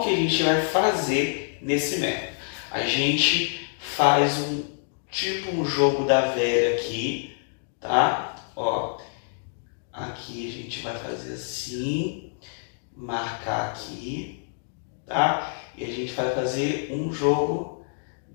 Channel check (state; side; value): silent; right; digital silence